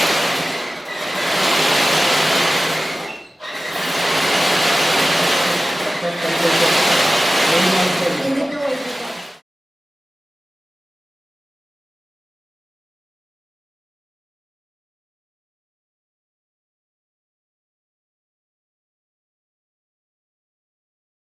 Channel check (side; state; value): both; normal; correlation 0.96